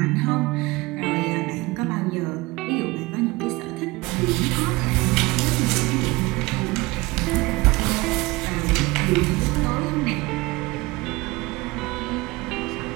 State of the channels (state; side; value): quieter; left; 22.2 dB